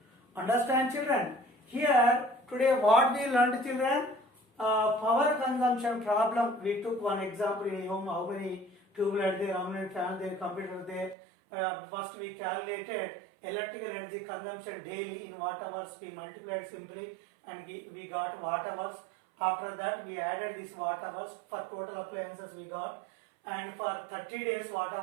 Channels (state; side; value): drops out; left; at 11.2 s